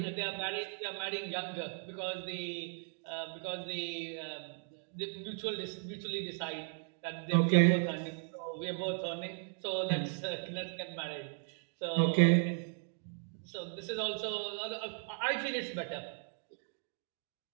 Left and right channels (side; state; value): left; silent; 53 dB below the other